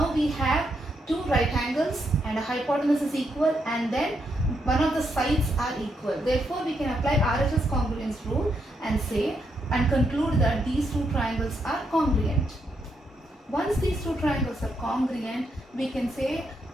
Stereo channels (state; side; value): normal; both; correlation 0.79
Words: we have two right angles and a hypotenuse is equal, and then one of the sides are equal. Therefore, we can apply RHS congruence rule and say and conclude that these two triangles are congruent. Once these two triangles are congruent, we can say